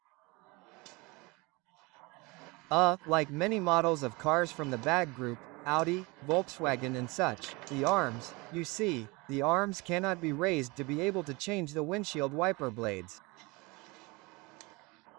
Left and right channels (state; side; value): quieter; left; 25.4 dB